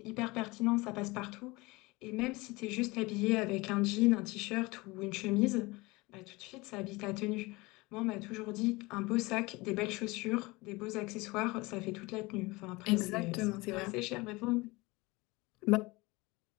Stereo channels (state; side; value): quieter; right; 23.0 dB